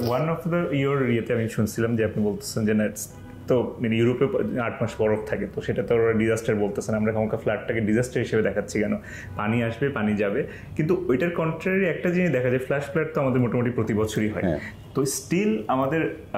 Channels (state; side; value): identical; both; correlation 1.00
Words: ওয়ান অফ দ্য ইয়েতে আমি শুনছিলাম যে আপনি বলতেছেন যে তো মানে ইউরোপে 8 মাস বরফ থাকে, তো সেটা তো ওরা ডিজাস্টার বলতেছেন, আমরা কখনো ফ্লাডটাকে ডিজাস্টার হিসেবে দেখাচ্ছি কেন? পানি আসবে, পানি যাবে, কিন্তু ওইটার কন্ট্রারি একটা জিনিস দেখা যায়, ফ্ল্যাশ ফ্লাড তো আমাদের মোটামুটি প্রতি বছরই হয়। তো স্টিল আমাদের